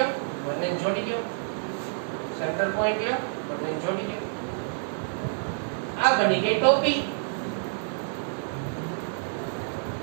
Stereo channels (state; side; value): silent; left; digital silence